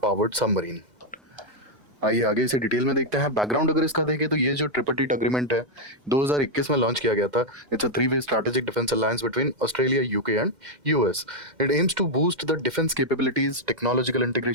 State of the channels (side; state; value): left; late; 2.1 ms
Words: submarine. आइए आगे इसे डिटेल में देखते हैं। बैकग्राउंड अगर इसका देखें तो ये जो ट्रिपरटेट अग्रीमेंट है 2021 में लॉन्च किया गया था। It's a three way strategic defence alliance between Australia, UK and US. It aims to boost the defence capabilities, technological